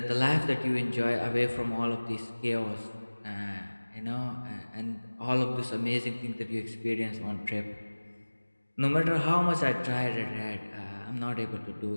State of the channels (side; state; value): both; inverted; correlation -1.00